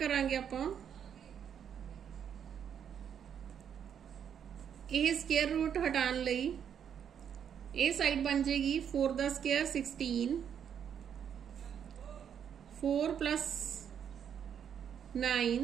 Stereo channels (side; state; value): left; quieter; 8.4 dB